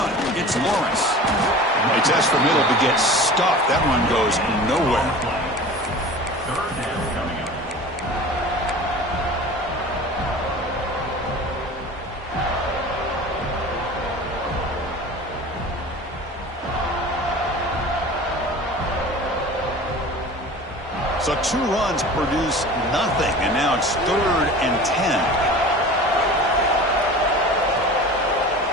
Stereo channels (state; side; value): normal; both; correlation 0.38